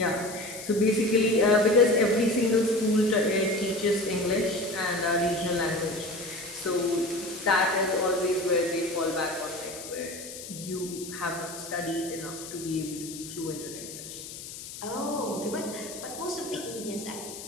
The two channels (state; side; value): noise; left; hiss, 12 dB below the sound